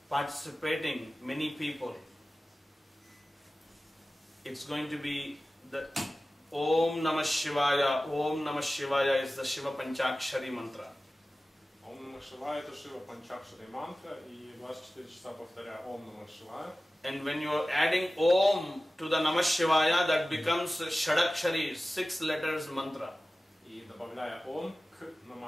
participating many people, it's going to be the Om Namah Shivaya. Om Namah Shivaya is the Shiva Panchakshari mantra. Ом Намах Шивая это Шива Панчакшари мантра, и 24 часа повторяя Ом Намах Шивая. And when you are adding Om to the Namah Shivaya, that becomes Shadakshari, 6 letters mantra. И добавляя Ом к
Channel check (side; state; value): both; normal; correlation 0.96